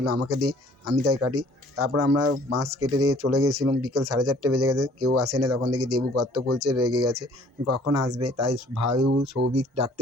আমাকে দে, আমি তাই কাটি। তারপর আমরা বাঁশ কেটে দিয়ে চলে গেছিলাম। বিকেল 4:30 বেজে গেছে, কেউ আসেনি। তখন দেখি দেবু গর্ত খুলছে, রেগে গেছে কখন আসবে, তাই ভাইউ সৌভিক ডাকতে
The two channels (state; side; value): normal; both; correlation 0.56